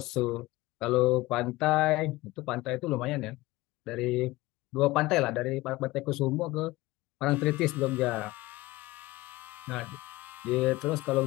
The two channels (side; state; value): right; quieter; 19.5 dB